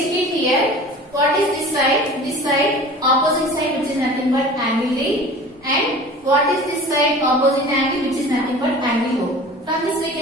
here. What is this side? This side, opposite side, which is nothing but angle D. And what is this side? Opposite angle, which is nothing but angle O. From this we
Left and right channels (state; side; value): normal; both; correlation 0.40